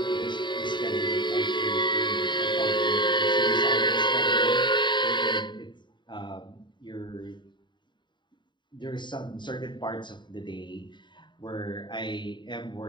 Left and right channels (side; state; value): right; late; 0.22 ms